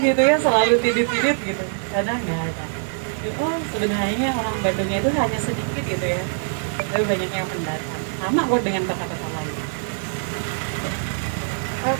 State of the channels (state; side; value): silent; left; digital silence